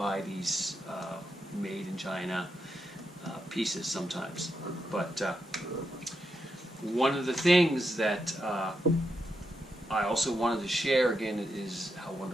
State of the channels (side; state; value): both; normal; correlation 0.84